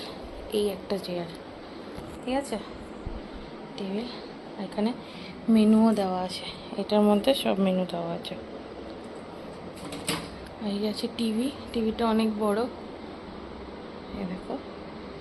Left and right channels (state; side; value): identical; both; correlation 1.00